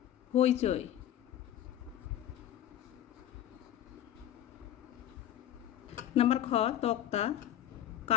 হইচই। নাম্বার খ, তক্তা,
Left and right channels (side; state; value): right; quieter; 11.5 dB